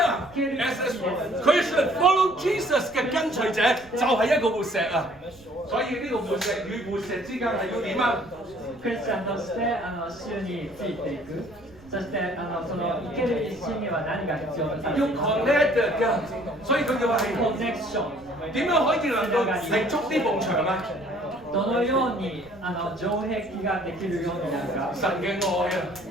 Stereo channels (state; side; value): noise; right; rumble, 26 dB below the sound